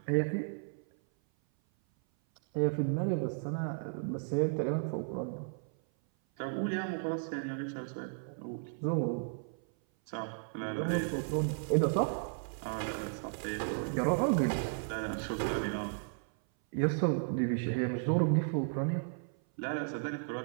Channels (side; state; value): left; silent; 55 dB below the other